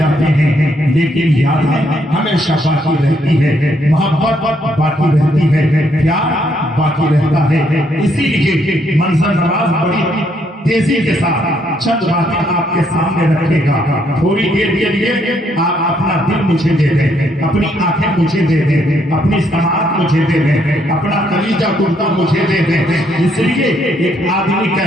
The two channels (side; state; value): both; normal; correlation 0.72